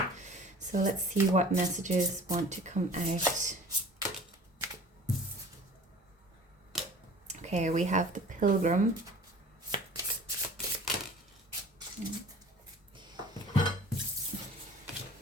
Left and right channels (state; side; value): normal; both; correlation 0.45